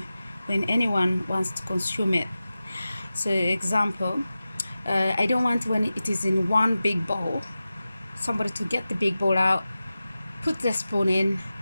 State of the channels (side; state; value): both; inverted; correlation -0.95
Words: when anyone wants to consume it. So example, I don't want when it is in one big bowl, somebody to get the big bowl out, put the spoon in,